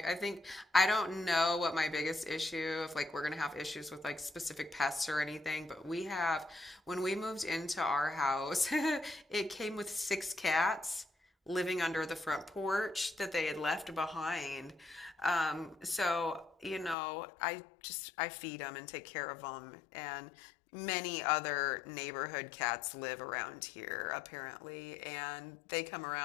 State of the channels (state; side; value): drops out; right; at 16.9 s